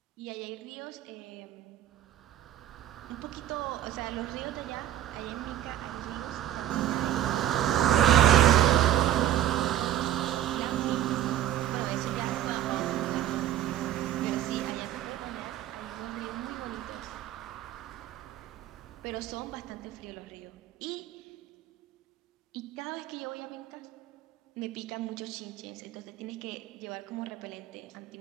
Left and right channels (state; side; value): quieter; left; 12.2 dB